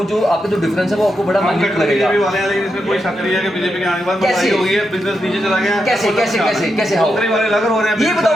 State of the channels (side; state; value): both; normal; correlation 0.85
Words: जो आपका जो डिफरेंस है वो आपको बड़ा माइन्यूट लगेगा। बीजेपी वाले हैं, लेकिन इसमें कोई शक नहीं है कि बीजेपी के आने के बाद महंगाई हो गई है, बिजनेस नीचे चला गया है। कैसे कैसे कैसे कैसे हो? नौकरी वाले लग रहे हैं, ये